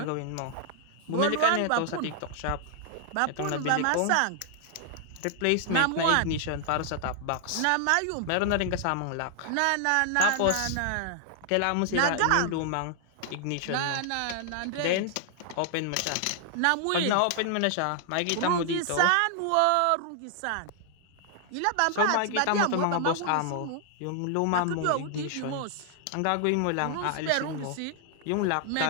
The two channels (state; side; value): different; both; correlation 0.00